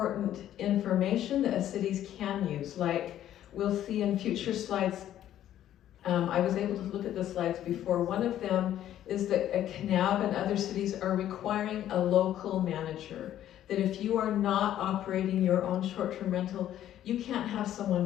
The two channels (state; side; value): quieter; right; 11.8 dB